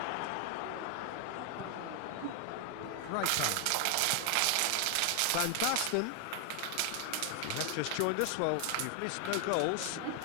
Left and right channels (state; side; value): different; both; correlation 0.00